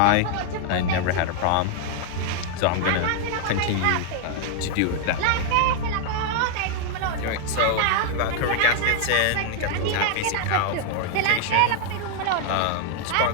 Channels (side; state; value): both; different; correlation 0.00